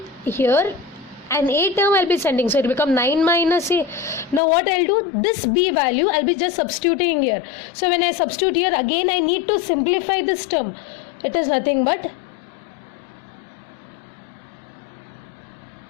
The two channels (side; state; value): right; drops out; at 4.4 s